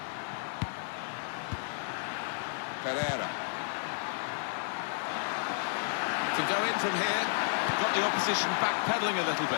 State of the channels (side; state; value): right; silent; 56 dB below the other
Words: Pereira. Can go in from here. Got the opposition backpedaling a little